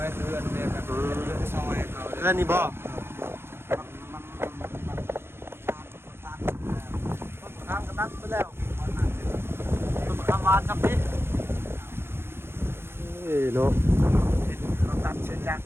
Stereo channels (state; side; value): late; left; 0.11 ms